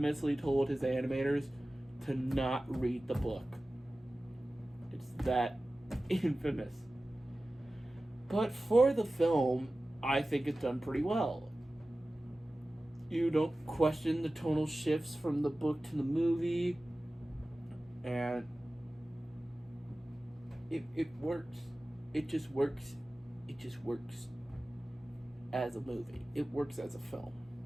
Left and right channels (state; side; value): normal; both; correlation 0.96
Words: told his animators to not read the book. It's that infamous. But for the film, I think it's done pretty well. You don't question the tonal shifts from the book to the movie, and it works. It just works. It just works as a movie. It works as a film.